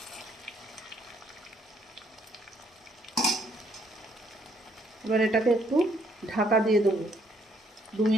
এবার এটাকে একটু ঢাকা দিয়ে দেবো। 2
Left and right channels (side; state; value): both; normal; correlation 0.68